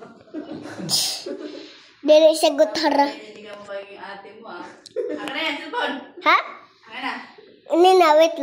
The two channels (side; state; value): both; identical; correlation 1.00